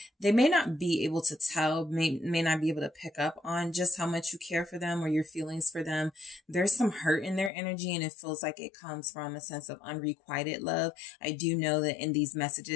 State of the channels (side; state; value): right; drops out; at 7.5 s